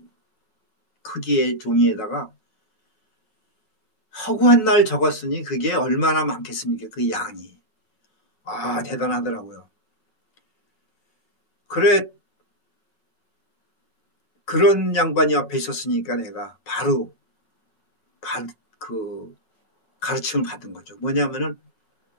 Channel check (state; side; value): late; right; 5.4 ms